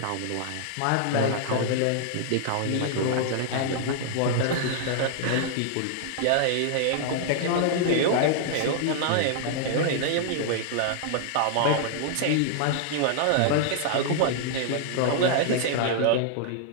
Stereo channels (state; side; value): different; both; correlation -0.01